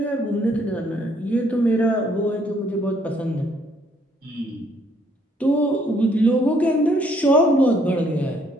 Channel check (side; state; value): both; normal; correlation 0.66